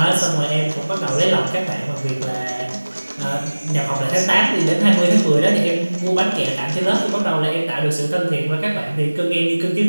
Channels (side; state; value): both; inverted; correlation -1.00